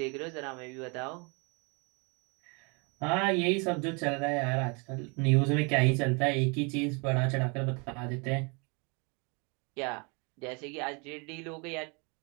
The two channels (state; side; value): quieter; left; 32.0 dB